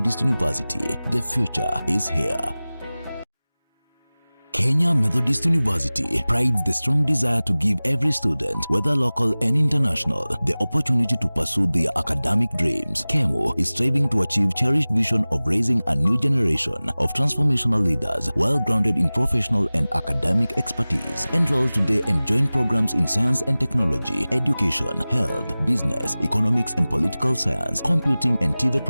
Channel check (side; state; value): both; inverted; correlation -0.99